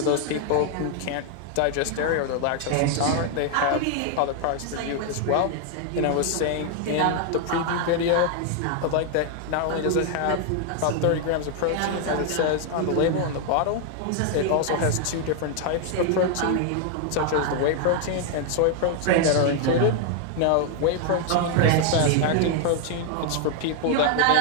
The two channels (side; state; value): both; different; correlation 0.00